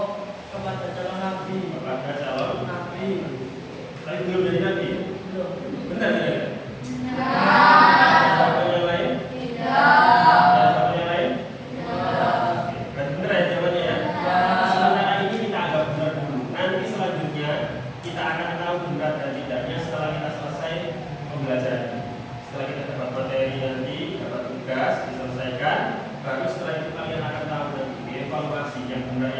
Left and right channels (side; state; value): both; identical; correlation 1.00